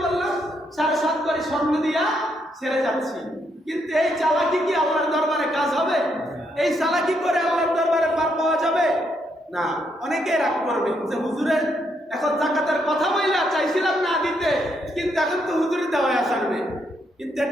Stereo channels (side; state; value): both; normal; correlation 0.76